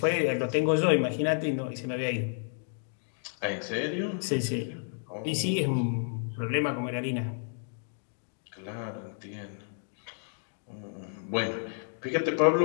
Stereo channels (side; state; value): right; silent; 57 dB below the other